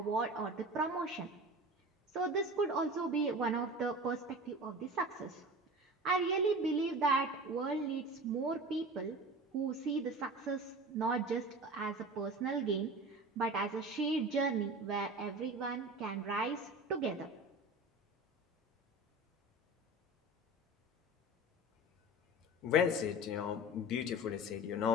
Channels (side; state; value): both; normal; correlation 0.34